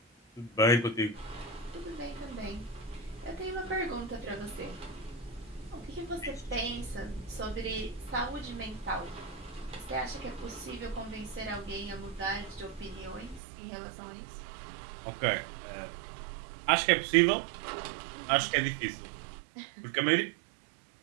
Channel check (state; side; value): drops out; left; at 13.4 s